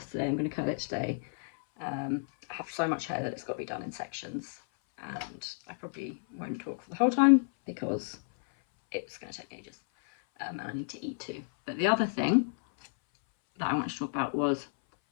I'm going to curl it today. I have so much hair that it's got to be done in sections, and I probably won't talk for the whole time because it's going to take ages, and I need to eat too. But the other thing that I wanted to talk about was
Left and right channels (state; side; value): silent; right; 57 dB below the other